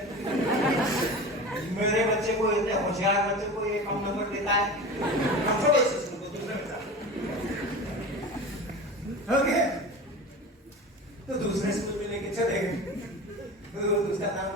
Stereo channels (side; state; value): both; normal; correlation 0.32